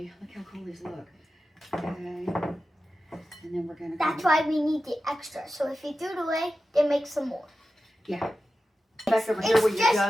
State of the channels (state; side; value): normal; both; correlation 0.93